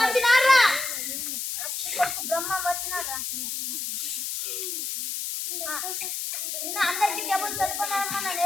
వచ్చినారా? బ్రహ్మం వచ్చినారా? నిన్న అందరికి టేబుల్ చదువుకున్నారమ్మా, నన్ను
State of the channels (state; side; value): noise; left; hiss, 3 dB below the sound